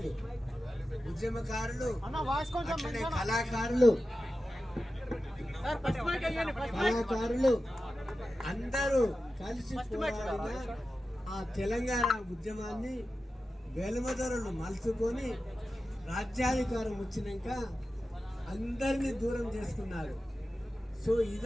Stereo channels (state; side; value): normal; both; correlation 0.93